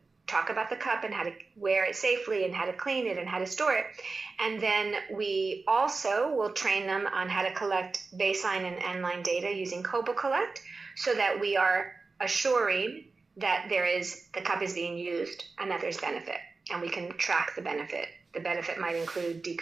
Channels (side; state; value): left; quieter; 4.0 dB